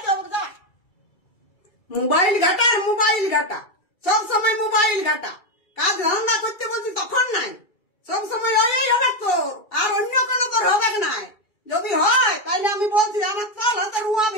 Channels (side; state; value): right; late; 2.3 ms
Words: হবে, যা। মোবাইল ঘাটা আর মোবাইল ঘাটা, সব সময় মোবাইল ঘাটা। কাজ ধান্দা করতে বলছি তখন নাই, সব সময় ওই হবে তোর, আর অন্য কোনো তোর হবে নাই। যদি হয় তাহলে আমি বলছি আমার চাল হাতে